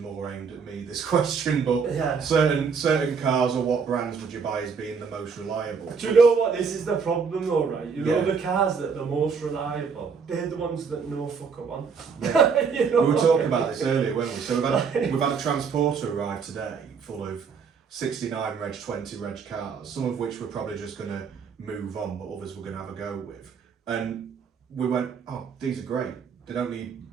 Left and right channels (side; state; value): left; quieter; 5.8 dB